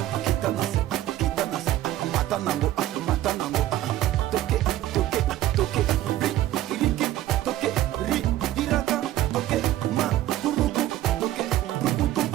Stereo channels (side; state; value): left; quieter; 14.1 dB